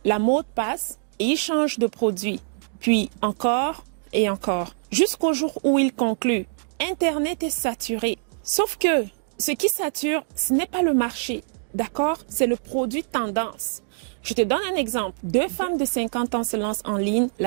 La mode passe et ils changent de produit. Puis encore et encore, jusqu'au jour où ils concluent. Internet est saturé. Sauf que ce qui sature, ce n'est pas le marché, d'accord? C'est le produit tendance. Je te donne un exemple. 2 femmes de 50 ans se lancent en ligne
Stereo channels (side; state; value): left; silent; digital silence